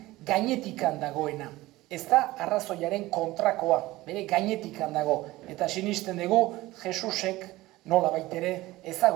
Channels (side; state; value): left; quieter; 18.3 dB